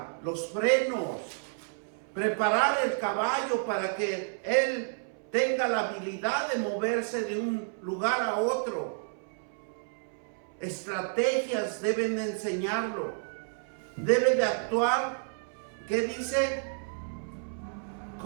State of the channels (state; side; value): silent; left; 57 dB below the other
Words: los frenos, preparar el caballo para que él tenga la habilidad de moverse de un lugar a otro. Estrategias deben de enseñarlo, debe de actuar, ¿qué dice?